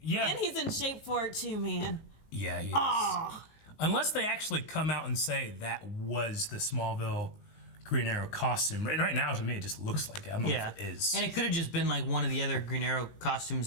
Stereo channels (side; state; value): right; late; 19 ms